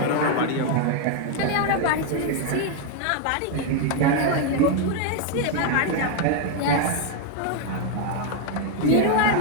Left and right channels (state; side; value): different; both; correlation 0.01